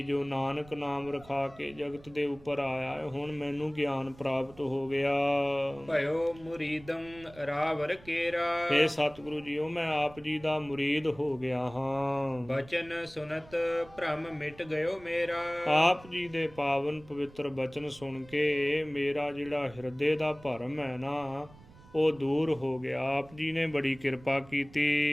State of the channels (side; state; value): right; noise; rumble, 22 dB below the sound